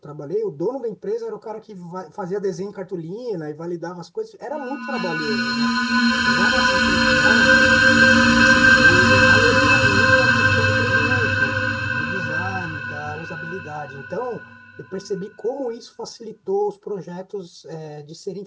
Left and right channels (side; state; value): both; identical; correlation 1.00